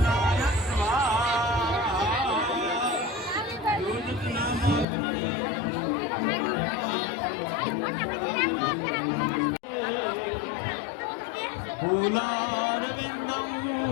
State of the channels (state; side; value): drops out; right; at 4.9 s